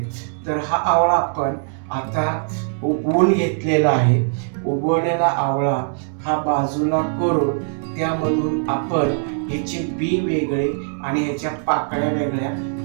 तर हा आवळा आपण आता उबवून घेतलेला आहे। उबवलेला आवळा हा बाजूला करून त्यामधून आपण याचे बी वेगळे आणि याच्या पाकळ्या वेगळ्या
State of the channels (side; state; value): left; silent; 65 dB below the other